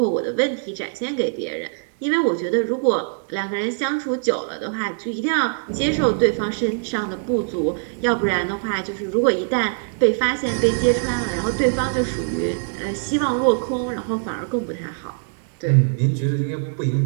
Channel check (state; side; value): silent; left; digital silence